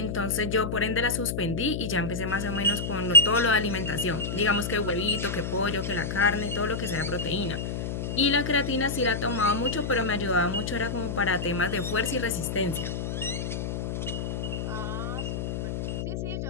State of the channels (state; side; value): noise; left; hum, 3 dB below the sound